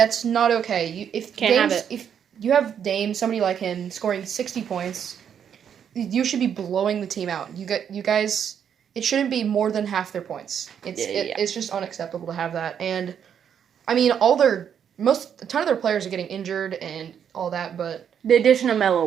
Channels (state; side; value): quieter; left; 8.3 dB